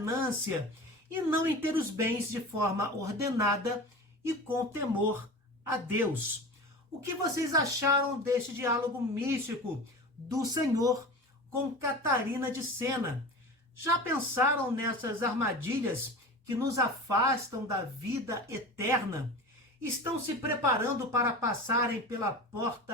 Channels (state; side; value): normal; both; correlation 0.32